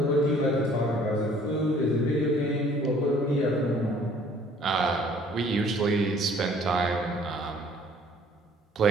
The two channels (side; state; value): both; normal; correlation 0.56